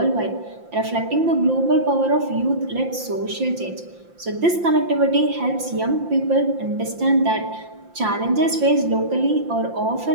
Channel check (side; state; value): left; late; 5.8 ms